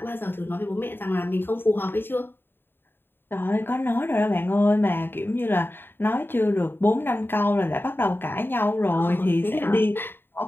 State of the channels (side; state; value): right; late; 0.10 ms